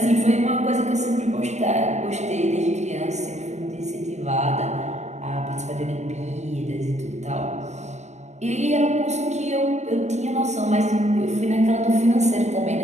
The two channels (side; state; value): left; late; 0.33 ms